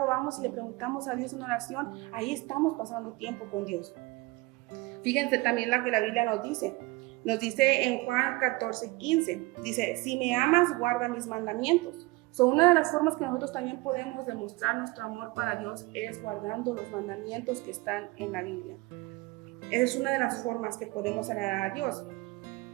vamos y le preguntamos a Dios en oración, ahí estamos pasando tiempo con Dios. Fíjense también lo que la Biblia nos dice en Juan 14:15, dice, si me amas, guarda mis mandamientos. Una de las formas que nosotros también podemos demostrar nuestro amor para Dios es guardando los mandamientos que están en la Biblia. Esa es una de las formas que podemos agradar a Dios.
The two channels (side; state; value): left; quieter; 22.7 dB